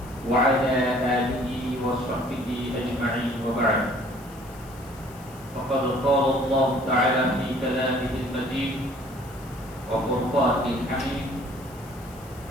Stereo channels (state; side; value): noise; left; hiss, 23 dB below the sound